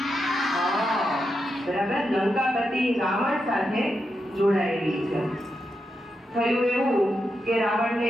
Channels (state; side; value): normal; both; correlation 0.86